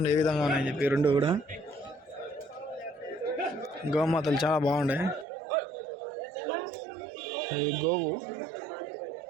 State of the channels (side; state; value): left; drops out; at 5.2 s